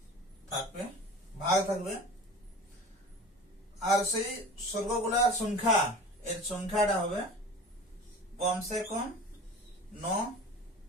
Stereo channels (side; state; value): both; normal; correlation 0.38